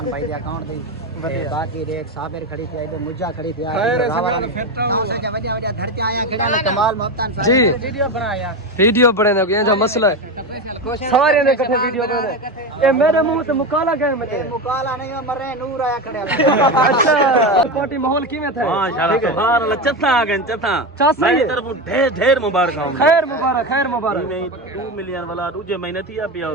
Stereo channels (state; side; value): normal; both; correlation 0.18